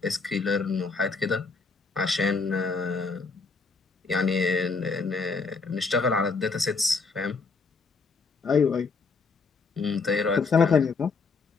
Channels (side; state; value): right; quieter; 4.4 dB